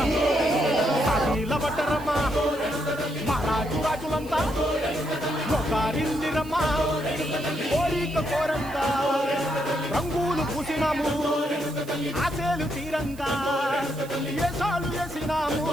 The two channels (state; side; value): noise; right; hiss, 20 dB below the sound